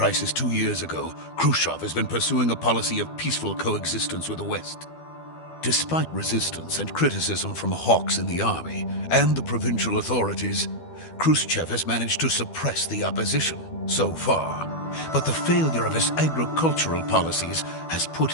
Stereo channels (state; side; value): late; right; 12 ms